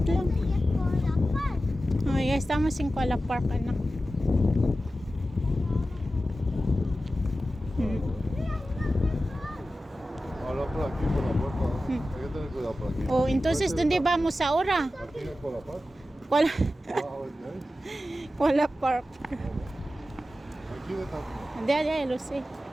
lang. Oh, ya estamos en Kuala Park, anak. Habla por aquí, por la puerta. Hay que tener cuidado por aquí. Oh, entonces, ¿dónde vamos ahora? Aquí es por la paz. Kuala, Ah, ok. Kuala Park. Aquí de tanto. Ya, lo sé.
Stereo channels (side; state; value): both; normal; correlation 0.93